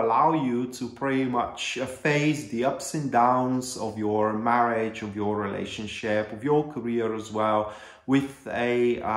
you to pretty much face the ups and downs of your marriage, of your relationship, of your career as well, with a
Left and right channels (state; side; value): identical; both; correlation 1.00